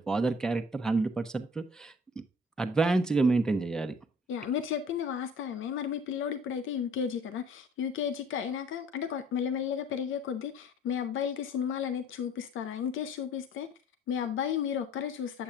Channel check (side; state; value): both; normal; correlation 0.52